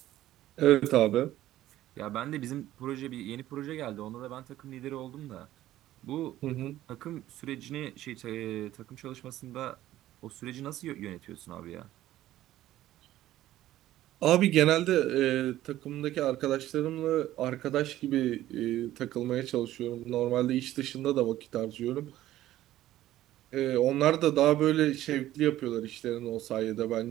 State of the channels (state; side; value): quieter; left; 14.2 dB